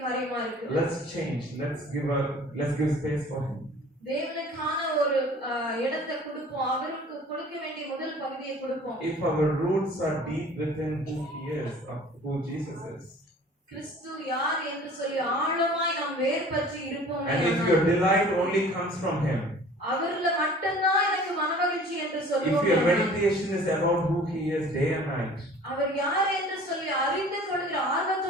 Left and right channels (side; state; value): both; normal; correlation 0.47